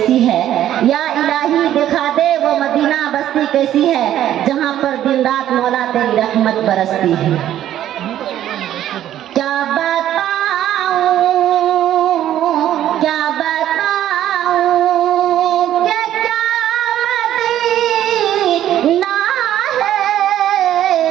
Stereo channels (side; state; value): left; quieter; 11.9 dB